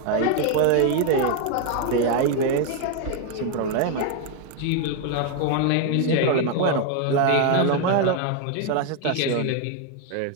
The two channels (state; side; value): different; both; correlation 0.01